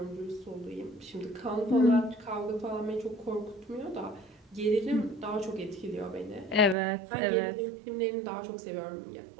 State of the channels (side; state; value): left; drops out; at 6.8 s